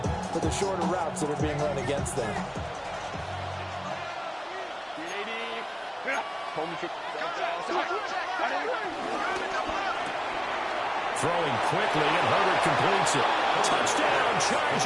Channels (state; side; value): identical; both; correlation 1.00